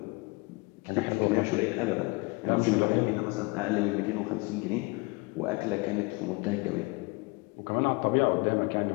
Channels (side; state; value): right; quieter; 26.9 dB